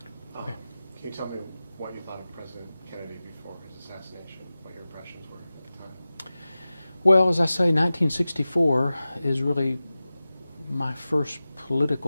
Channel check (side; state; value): both; inverted; correlation -0.96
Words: Okay. Can you tell me what you thought of President Kennedy before his assassination, what your impressions were at the time? Well, as I say, 1964 is really my first